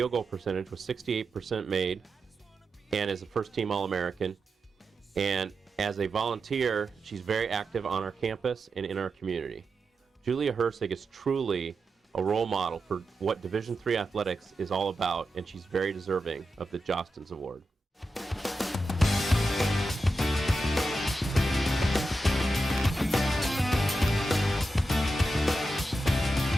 goal percentage with 68% made and is a first-team All-American. And as a volunteer, she's very active on our campus and in our community. Julia Hirssig is truly a role model for what Division III athletics is all about, and she's very deserving of the Jostens Award.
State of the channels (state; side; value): normal; both; correlation 0.89